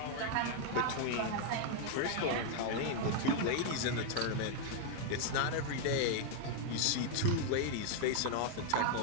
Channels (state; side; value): different; both; correlation 0.00